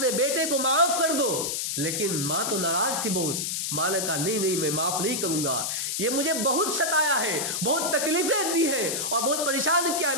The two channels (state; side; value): noise; left; hiss, 1 dB below the sound